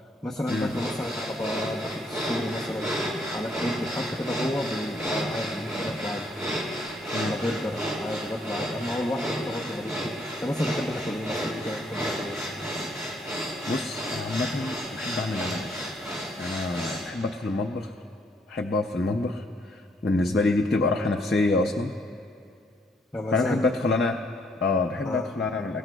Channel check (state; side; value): normal; both; correlation 0.69